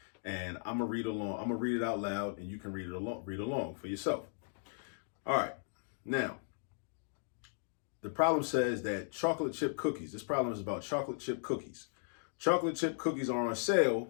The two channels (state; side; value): silent; right; digital silence